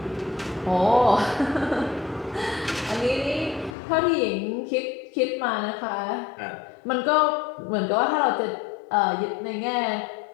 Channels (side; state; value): right; drops out; at 3.8 s